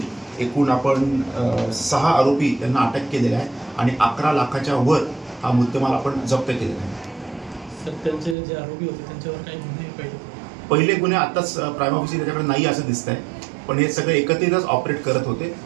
एकूण आपण 6 आरोपी यांना अटक केलेला आहे आणि 11 लाखाच्या वर हा मुद्देमाल आपण जप्त केलेला आहे। सर, त्यांचे जे आरोपी होते त्यांच्यावर काही गुन्हे पहिले गुन्हे आताच प्राइम ऑफिसर त्याच्याकडे नाही असं दिसत आहे, पण हे सगळे एकत्रितच ऑपरेट करत होते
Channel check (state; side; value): drops out; left; at 8.3 s